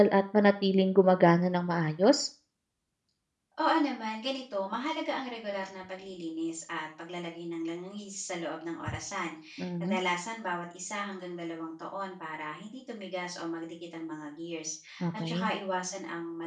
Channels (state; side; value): identical; both; correlation 1.00